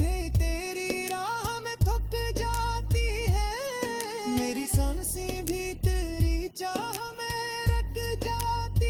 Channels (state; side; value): identical; both; correlation 1.00